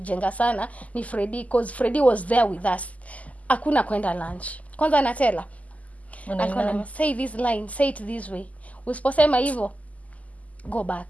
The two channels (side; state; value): right; late; 0.073 ms